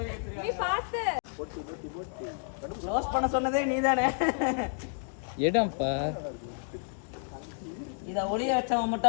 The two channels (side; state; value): right; silent; digital silence